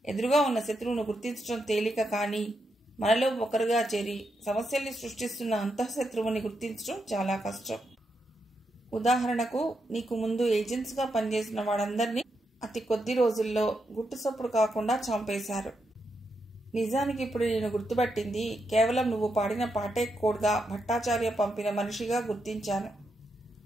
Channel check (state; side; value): normal; both; correlation 0.83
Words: ఎదురుగా ఉన్న శత్రువును గుర్తించడం తేలిక, కానీ మనలో ఒకరుగా చేరి సమస్యల్ని సృష్టిస్తున్న అంతఃశత్రువుని గుర్తించడం చాలా కష్టం. ఉదాహరణకు, నీకు ముందు ఏజెంట్స్గా పనిచేసిన వాళ్ళందరినీ అతి కొద్ది రోజుల్లో గుట్టుసప్పుడు కాకుండా చంపేశారు. నిజానికి ఇప్పుడు నేను గుర్తుపట్టింది కేవలం నువ్వు పాడిన పాటే కోడ్గా భట్టాచార్య పంపిన మనిషిగా గుర్తించాను.